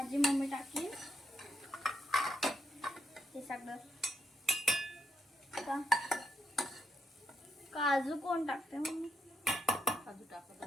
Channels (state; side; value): normal; both; correlation 0.80